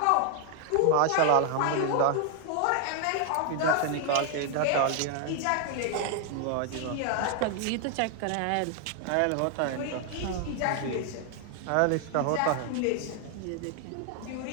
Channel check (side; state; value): both; different; correlation 0.00